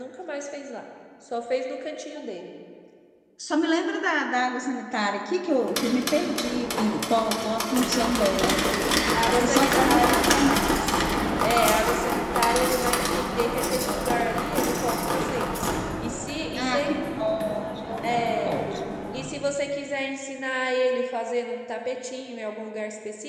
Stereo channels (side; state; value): both; identical; correlation 1.00